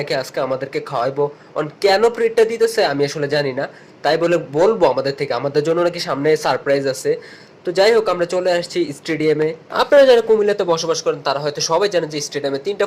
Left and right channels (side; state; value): both; identical; correlation 1.00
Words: আজকে আমাদেরকে খাওয়াইবো। কেন ট্রিটটা দিতেছে আমি আসলে জানি না, তাই বলে বলবো আমাদের থেকে, আমাদের জন্য নাকি সামনে সারপ্রাইজ আছে। তো যাই হোক, আমরা চলে আসছি স্টেডিয়ামে। আপনারা যারা কুমিল্লাতে বসবাস করেন তারা হয়তো সবাই জানেন যে স্টেডিয়ামে 3টা